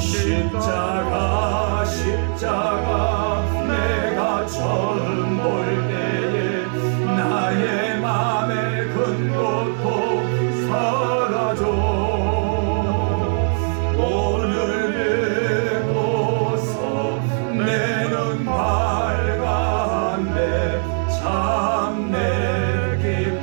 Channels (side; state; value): left; silent; 59 dB below the other